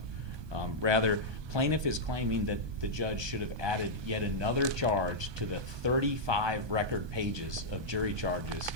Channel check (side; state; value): left; late; 1.2 ms